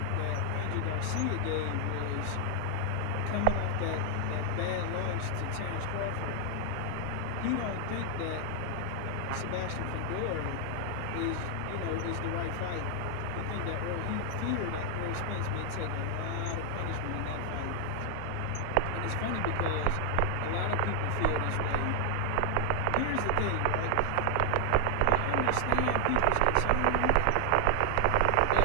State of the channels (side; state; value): both; different; correlation 0.00